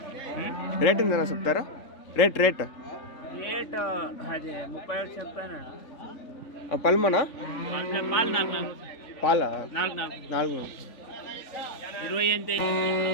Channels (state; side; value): late; right; 3.4 ms